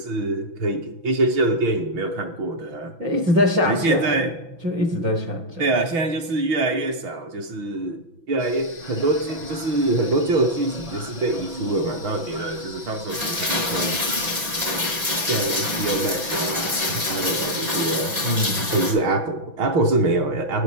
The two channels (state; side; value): late; left; 6.0 ms